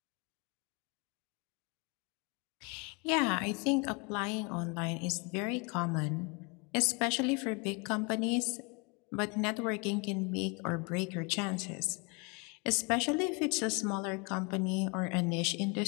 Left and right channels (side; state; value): right; quieter; 31.1 dB